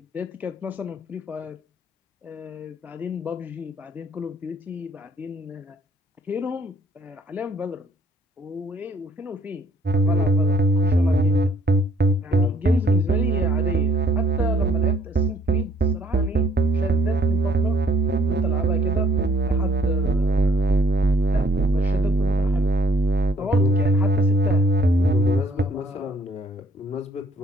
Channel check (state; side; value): normal; both; correlation 0.63